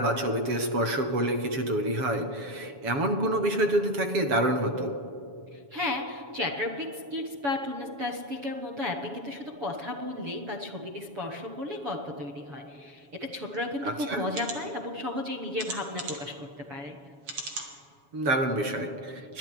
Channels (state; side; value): late; left; 7.1 ms